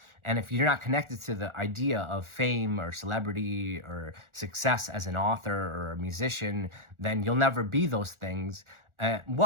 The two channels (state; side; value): late; left; 1.4 ms